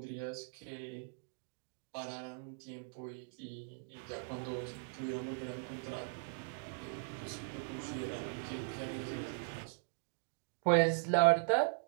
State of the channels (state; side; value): silent; left; digital silence